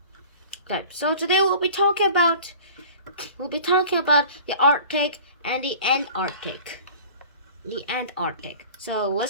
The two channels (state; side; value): inverted; both; correlation -0.43